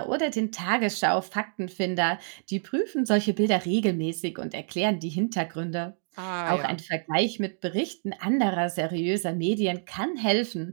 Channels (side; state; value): left; silent; digital silence